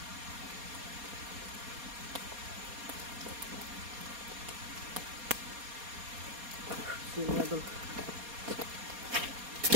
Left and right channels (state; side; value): late; left; 4.2 ms